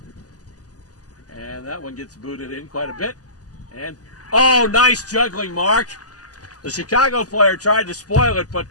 And that one gets booted in quite a bit. And, oh, nice juggling, Mark. The Chicago player tried to spoil it, but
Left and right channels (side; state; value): right; late; 0.67 ms